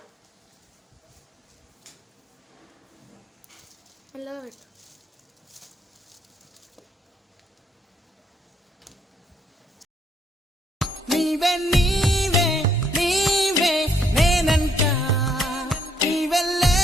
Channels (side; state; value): both; normal; correlation 0.70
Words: మెల్లగా పెట్టు. నీవే నీవే నీవే నేనంట, నీవే